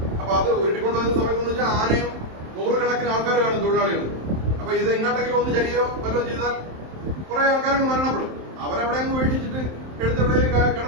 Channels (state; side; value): late; left; 27 ms